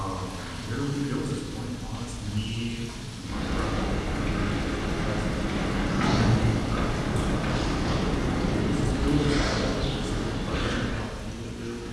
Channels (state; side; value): identical; both; correlation 1.00